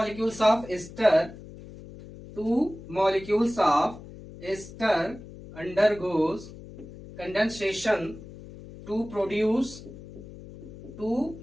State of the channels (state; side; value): noise; left; hum, 16 dB below the sound